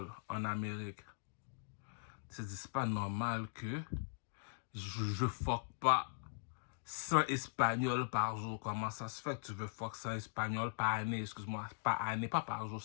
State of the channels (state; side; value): silent; right; digital silence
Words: en Amérique. C'est pas normal que je fuck pas 100 Espagnols par jour. Comment ça se fait que tu veux fuck 100 Espagnols par année? Excuse-moi, par année, pas par jour.